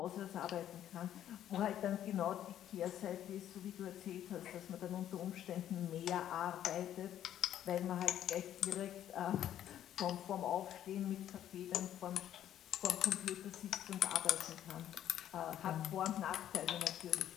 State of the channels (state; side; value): quieter; right; 11.2 dB